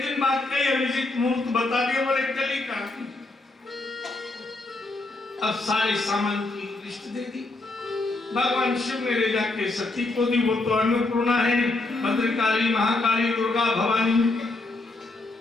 दिन बाद कई अभिजीत मुहूर्त बता दिया, बोले कल ही का। अब सारे सामान की लिस्ट दे दी। भगवान शिव ने ले जाके सती को दी, वो तो अन्नपूर्णा है, भद्रकाली, महाकाली, दुर्गा, भवानी,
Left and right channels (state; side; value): quieter; right; 3.1 dB